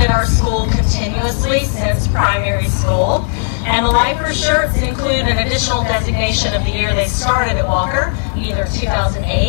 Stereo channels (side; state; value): right; silent; digital silence